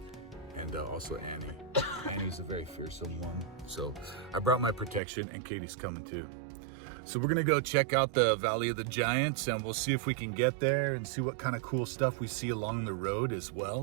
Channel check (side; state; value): left; drops out; at 5.0 s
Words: And also Annie. Annie's a very fearsome one. So I brought my protection and Katie's coming too. So we're gonna go check out the Valley of the Giants and we'll see if we can get there and see what kind of cool stuff we see along the road as